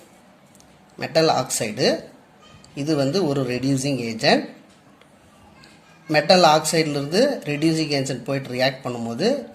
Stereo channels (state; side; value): identical; both; correlation 1.00